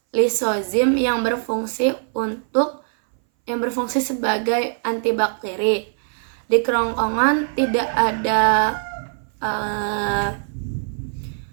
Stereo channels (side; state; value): left; silent; 61 dB below the other